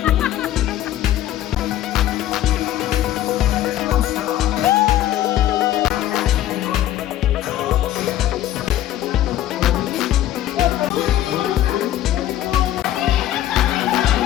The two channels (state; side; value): quieter; right; 12.8 dB